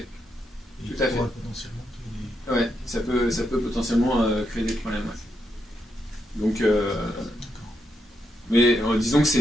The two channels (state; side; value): normal; both; correlation 0.81